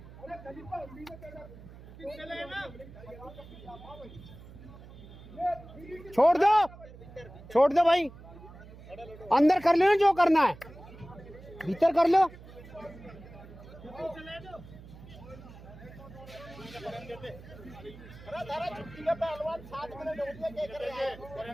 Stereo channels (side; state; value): right; noise; hum, 17 dB below the sound